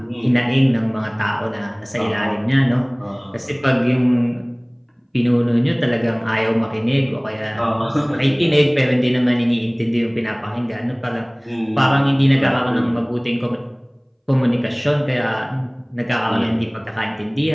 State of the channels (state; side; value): identical; both; correlation 1.00